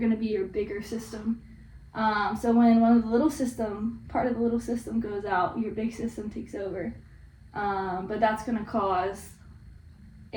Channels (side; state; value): both; identical; correlation 1.00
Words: to be your bigger system. So when one of the part of the little system goes out, your big system takes over. But that's going to cause